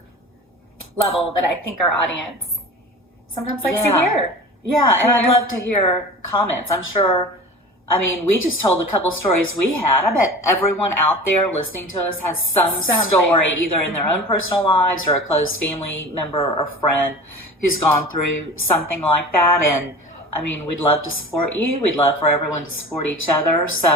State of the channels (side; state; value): both; normal; correlation 0.36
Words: level that I think our audience sometimes likes to hear. Yeah, and I'd love to hear comments. I'm sure, we just told a couple stories we had. I bet everyone out there listening to us has some story, either in their own personal lives or a close family member or friend who's gone through something like that. And, we'd love to support you. We'd love for everyone to support each other.